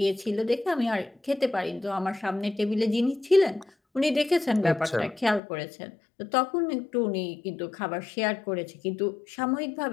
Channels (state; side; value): drops out; right; at 5.4 s